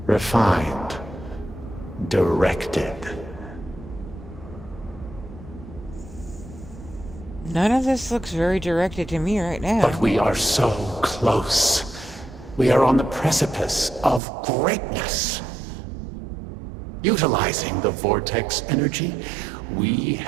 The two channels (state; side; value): drops out; left; at 14.2 s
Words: refined, directed. None of this looks very directed to me right now. But we are so close. We are on the precipice of greatness. Utilizing the vortex energy, we